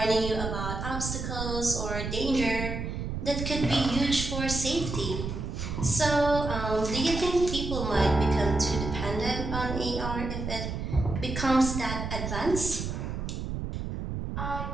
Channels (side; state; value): right; noise; rumble, 4 dB below the sound